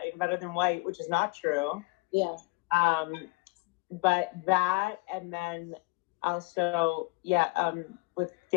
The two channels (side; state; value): right; quieter; 25.7 dB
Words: better than white, which is not true. Yeah. But that, and then also, with